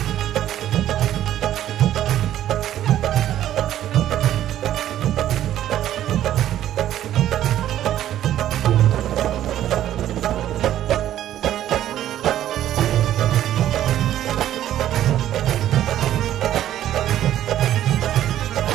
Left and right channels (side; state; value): left; quieter; 12.1 dB